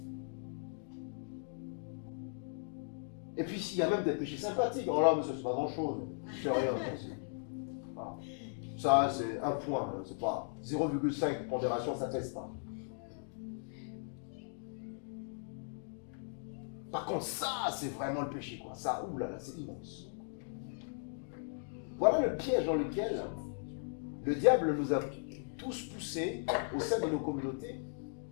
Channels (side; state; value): right; silent; digital silence